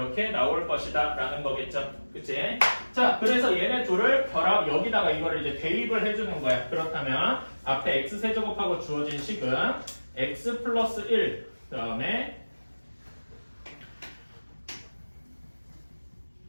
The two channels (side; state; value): both; inverted; correlation -1.00